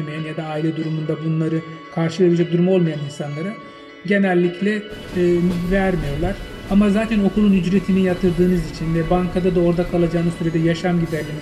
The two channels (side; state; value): both; identical; correlation 1.00